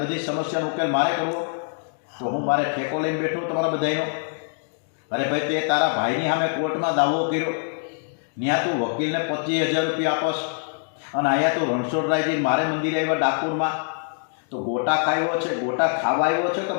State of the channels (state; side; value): silent; right; digital silence